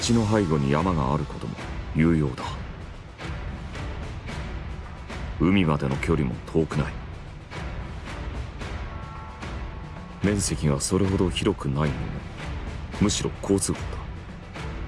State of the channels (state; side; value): identical; both; correlation 1.00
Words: の背後に山があることも有用だ。海までの距離も遠くない。面積がそれほど広くないのもむしろ好都合だ。